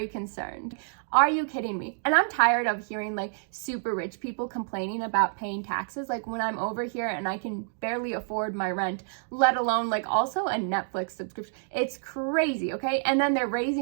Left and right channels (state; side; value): silent; left; digital silence